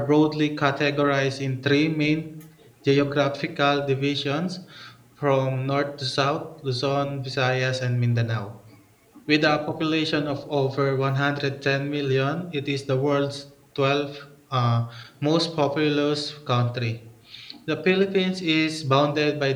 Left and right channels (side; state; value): both; identical; correlation 1.00